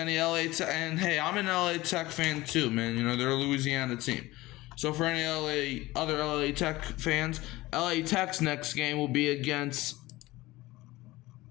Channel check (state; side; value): quieter; right; 19.0 dB